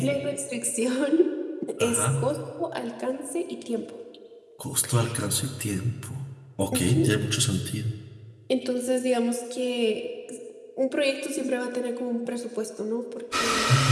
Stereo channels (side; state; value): both; identical; correlation 1.00